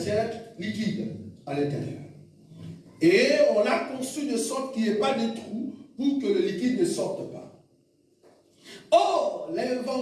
liquide à l'intérieur. Et on l'a conçu de sorte qu'il n'y ait pas de trou pour que le liquide ne sorte pas. Or,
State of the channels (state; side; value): identical; both; correlation 1.00